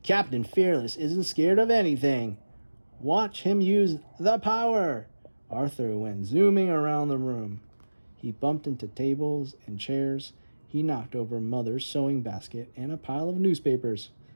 "Captain Fearless isn't scared of anything. Watch him use the power." Arthur went zooming around the room. He bumped into tables and chairs. He knocked over Mother's sewing basket and a pile of newspapers.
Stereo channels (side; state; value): both; inverted; correlation -1.00